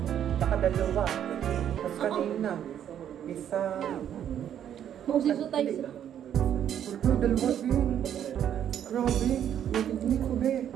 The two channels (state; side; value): quieter; left; 9.8 dB